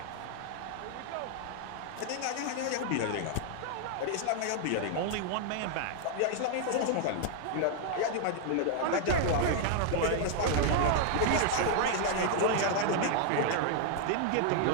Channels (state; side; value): different; both; correlation 0.00